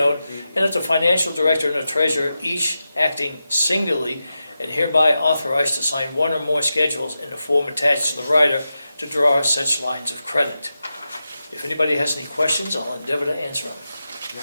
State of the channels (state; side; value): inverted; both; correlation -0.91